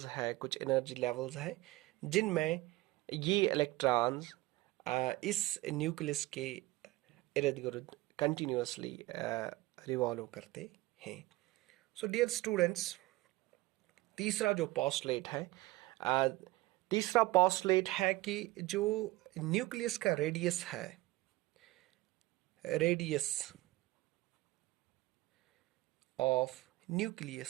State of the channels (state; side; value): quieter; left; 19.7 dB